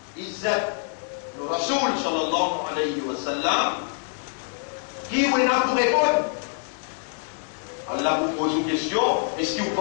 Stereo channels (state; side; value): silent; right; 62 dB below the other